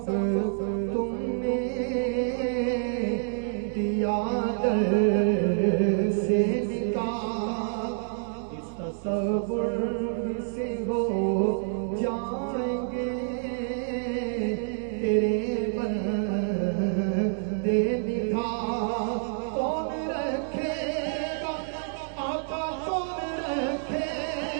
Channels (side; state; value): left; silent; 60 dB below the other